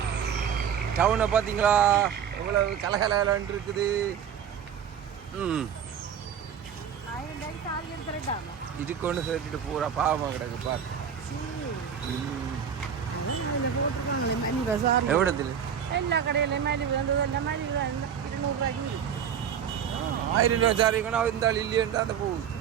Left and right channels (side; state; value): left; quieter; 8.2 dB